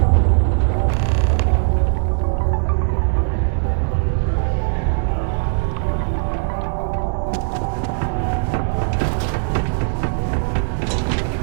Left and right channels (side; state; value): left; silent; 66 dB below the other